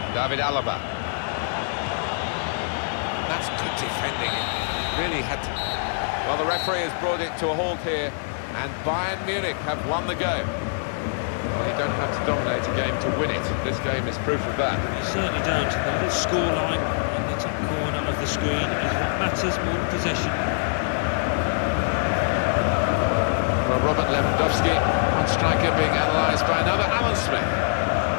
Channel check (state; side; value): silent; right; 61 dB below the other